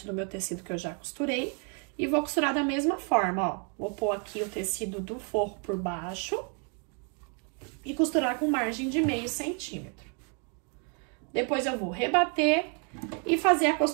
do meu tecido que eu já costurei. E vou costurar da mesma forma, ó. Vou pôr aqui o tecido do forro por baixo e costurar com margem de meio centímetro. Depois, eu vou rebater e fazer a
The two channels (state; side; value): quieter; left; 39.1 dB